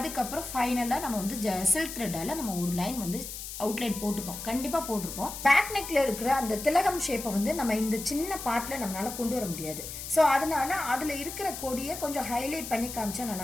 ஃபைனலாக நம்ம வந்து சில்க் த்ரெட்டால் நம்ம ஒரு லைன் வந்து அவுட்லைன் போட்டிருப்போம், கண்டிப்பாக போட்டிருப்போம். பேக் நெக்ல இருக்கிற அந்த திலகம் ஷேப்பை வந்து நம்ம இந்த சின்ன பார்ட்டில் நம்மளால கொண்டு வர முடியாது. ஸோ அதனால அதில் இருக்கிற கொடியை கொஞ்சம் ஹைலைட் பண்ணி காமிச்சா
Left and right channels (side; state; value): left; noise; hiss, 9 dB below the sound